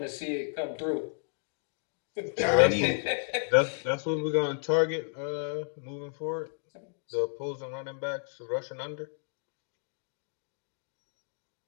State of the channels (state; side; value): silent; right; digital silence